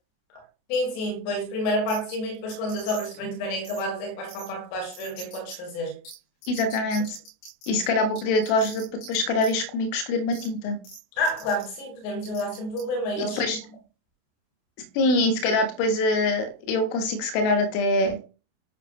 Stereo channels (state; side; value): late; right; 27 ms